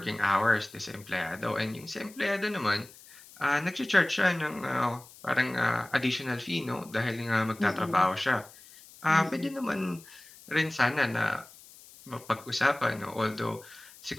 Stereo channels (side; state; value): left; noise; hiss, 21 dB below the sound